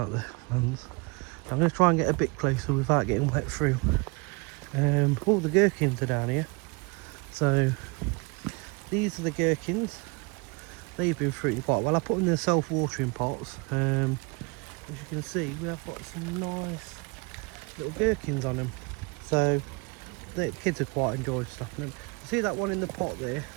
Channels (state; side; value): quieter; left; 28.9 dB